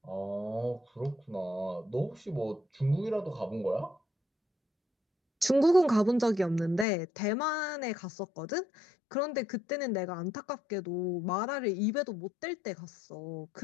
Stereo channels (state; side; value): drops out; right; at 6.9 s